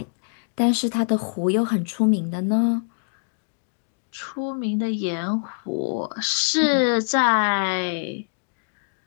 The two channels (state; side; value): silent; right; digital silence